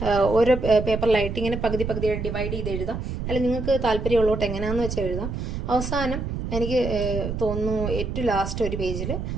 ഓരോ പേപ്പറിലായിട്ട് ഇങ്ങനെ പകുതി ഡിവൈഡ് ചെയ്ത് എഴുതാം. അല്ലെങ്കിൽ നിങ്ങൾക്ക് താല്പര്യമുള്ളോട്ട് എങ്ങനെയാണെന്ന് വെച്ചാൽ എഴുതാം. അവസാനം എനിക്ക് തോന്നുന്നു ഏറ്റവും ലാസ്റ്റ് ഒരു പേജിൽ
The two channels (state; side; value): noise; right; rumble, 4 dB below the sound